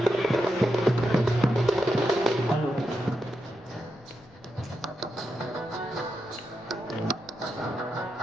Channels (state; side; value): noise; left; rumble, 28 dB below the sound